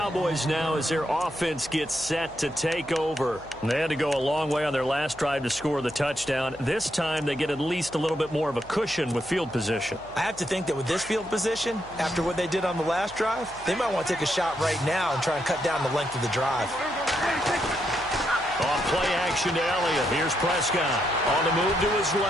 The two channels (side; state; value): left; noise; hum, 22 dB below the sound